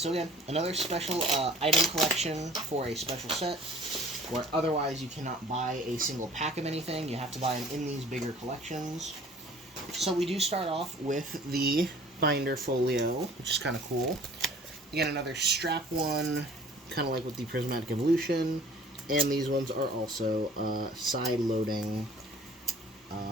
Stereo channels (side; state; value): both; normal; correlation 0.50